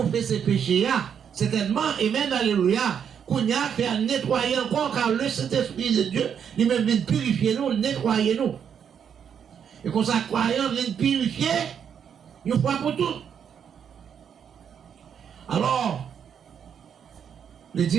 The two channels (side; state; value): left; quieter; 7.9 dB